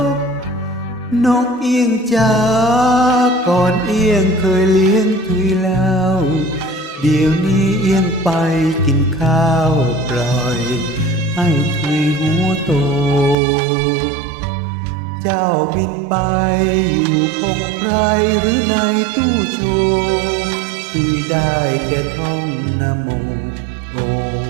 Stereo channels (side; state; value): left; drops out; at 13.4 s